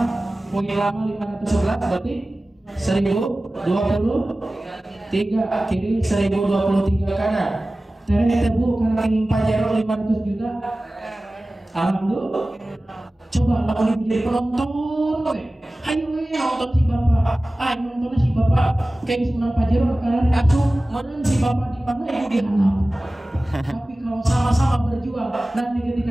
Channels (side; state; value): both; normal; correlation 0.97